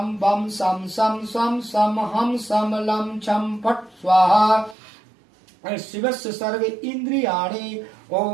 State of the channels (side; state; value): left; drops out; at 4.8 s